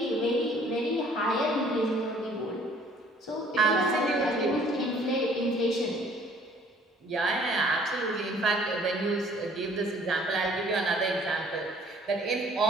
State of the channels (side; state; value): both; normal; correlation 0.57